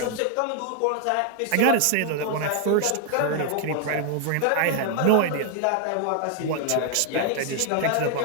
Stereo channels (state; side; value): different; both; correlation 0.00